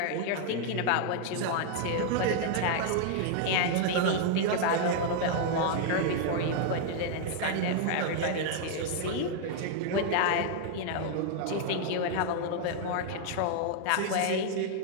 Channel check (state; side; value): different; both; correlation 0.00